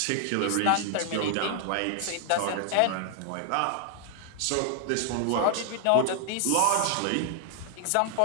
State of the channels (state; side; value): different; both; correlation 0.00